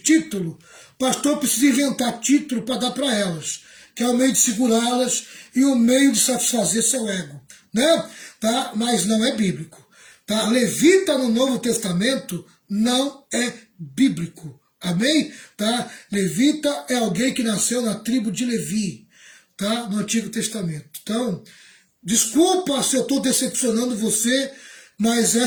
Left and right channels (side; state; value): both; identical; correlation 1.00